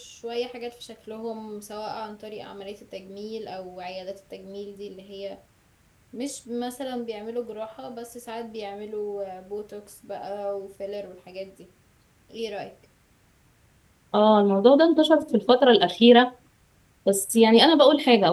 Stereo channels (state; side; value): identical; both; correlation 1.00